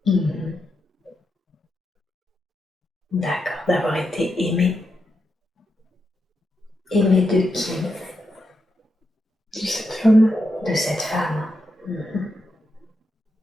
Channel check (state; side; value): normal; both; correlation 0.85